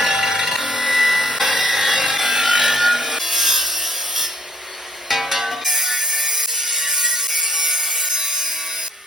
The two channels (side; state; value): both; normal; correlation 0.62